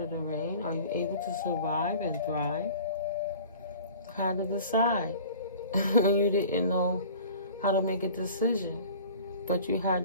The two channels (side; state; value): both; inverted; correlation -0.44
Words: the rain? Are you able to survive and thrive? How to decide when you didn't know how to make a decision, but you had